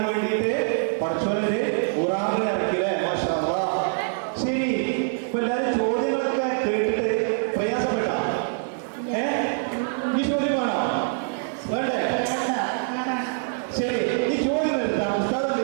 വേണ്ടിയിട്ട് പഠിച്ചോനൊരു ഖുറാനിനെ ഇറക്കില്ലേ? മാഷാ അല്ലാഹ്. ശരി, ഇപ്പൊ എല്ലാരും ചോദ്യങ്ങളൊക്കെ കേട്ടിട്ട് പ്രയാസപ്പെട്ട ഈ ചോദ്യം വേണോ? വേണ്ടേ? ശരി, ഈ ചോദ്യം എടുത്താൽ ഉസ്താദ് എന്ത്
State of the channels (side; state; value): left; silent; digital silence